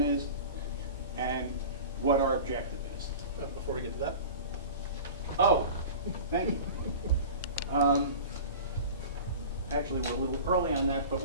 is and what our objective is. Before we get to that. Oh, thank you. Actually, we're a little early on that, but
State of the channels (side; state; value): both; inverted; correlation -0.36